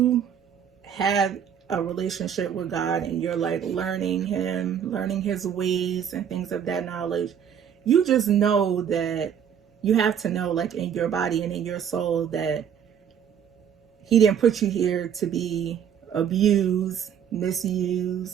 have a relationship with God and you're like learning him, learning his ways and things of that knowledge, you just know that you have to know, like, in your body and in your soul, that he didn't put you here to be abused,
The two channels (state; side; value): quieter; left; 8.4 dB